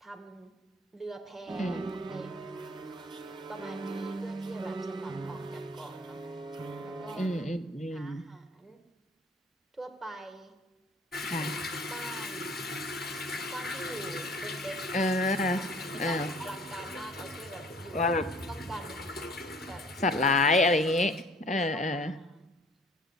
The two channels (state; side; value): normal; both; correlation 0.53